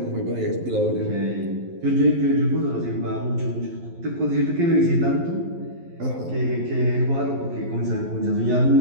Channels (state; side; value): late; left; 11 ms